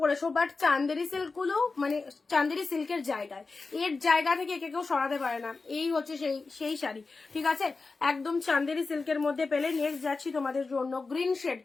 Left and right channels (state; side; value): quieter; right; 4.0 dB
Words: বাট চান্দেরি সিল্ক গুলো মানে চান্দেরি সিল্কের জায়গায়, এর জায়গা থেকে একে কেউ সরাতে পারে না। এই হচ্ছে সেই শাড়ি, ঠিক আছে, একদম চান্দেরি সিল্কের মধ্যে পেলে। নেক্সট যাচ্ছি তোমাদের জন্য গ্রিন শেড,